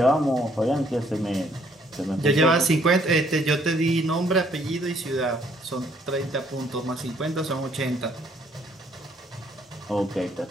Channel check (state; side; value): normal; both; correlation 0.65